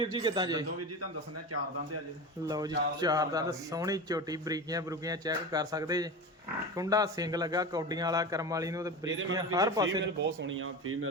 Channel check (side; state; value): both; normal; correlation 0.27